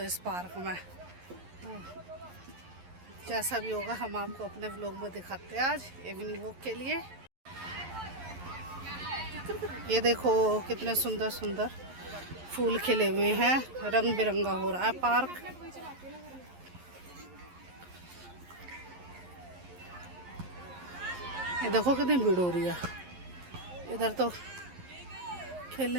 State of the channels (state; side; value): late; left; 11 ms